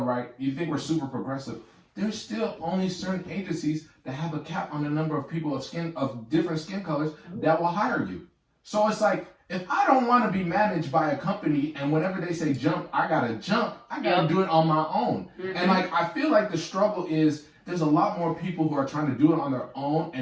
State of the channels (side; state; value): both; identical; correlation 1.00